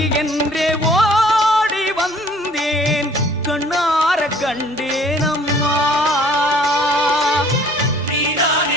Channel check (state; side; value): normal; both; correlation 0.55